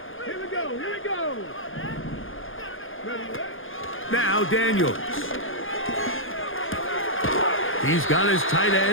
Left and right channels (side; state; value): right; late; 0.59 ms